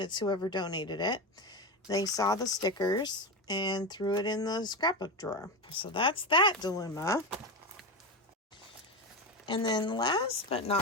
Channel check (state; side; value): normal; both; correlation 0.18